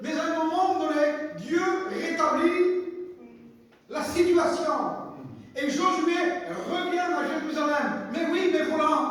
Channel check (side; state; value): both; identical; correlation 1.00